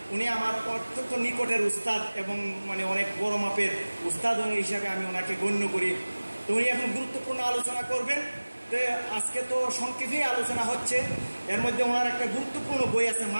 উনি আমার অত্যন্ত নিকটের উস্তাদ এবং মানে অনেক বড় মাপের উস্তাদ হিসাবে আমি ওনাকে গণ্য করি। তো উনি এখন গুরুত্বপূর্ণ আলোচনা করবেন। তো আজকে তো সংক্ষেপে আলোচনা হচ্ছে, এর মধ্যে ওনার একটা গুরুত্বপূর্ণ বই আছে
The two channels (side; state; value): both; inverted; correlation -1.00